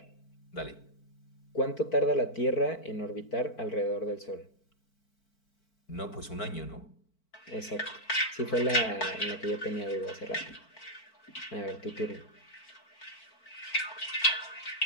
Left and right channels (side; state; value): right; late; 4.5 ms